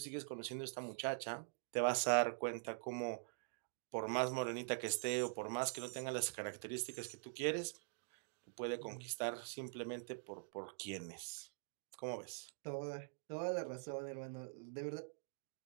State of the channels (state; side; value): silent; left; digital silence